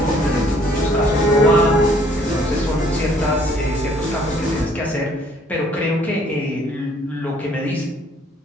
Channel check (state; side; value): normal; both; correlation 0.61